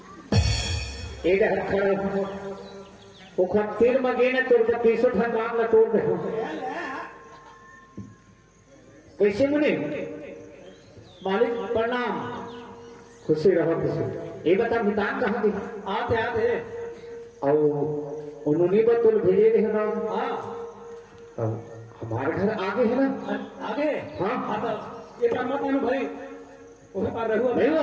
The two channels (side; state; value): both; identical; correlation 1.00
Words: एक खड़े वो तीर में गए ना तोड़ के 300 ठन राम ना तोड़ दे कैसे मुनि मालिक प्रणाम खुशी रहो खुशी ये बता मितान कहाँ गई आते आते और उन्होंने बतौल भेजे रहे ना हाँ अब हमारे घर आगे है ना आगे हाँ हाँ तो ये पर मत आनु भाई वही पर रहू नहीं